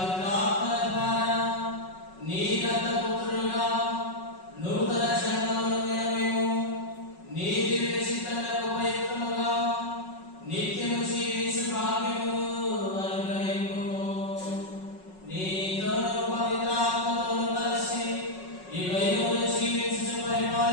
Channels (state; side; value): late; right; 5.4 ms